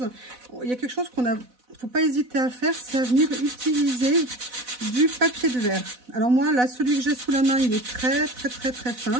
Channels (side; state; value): left; late; 4.0 ms